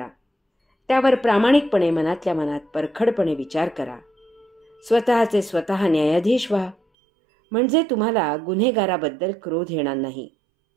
त्यावर प्रामाणिकपणे मनातल्या मनात परखडपणे विचार करा. स्वतःचे स्वतः न्यायाधीश व्हा. म्हणजे तुम्हाला गुन्हेगाराबद्दल क्रोध येणार नाही,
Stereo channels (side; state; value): left; drops out; at 6.8 s